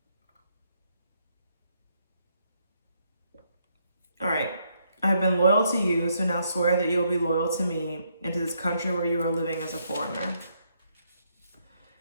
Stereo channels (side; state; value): both; inverted; correlation -0.74